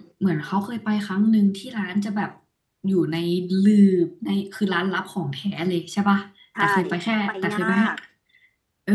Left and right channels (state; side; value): identical; both; correlation 1.00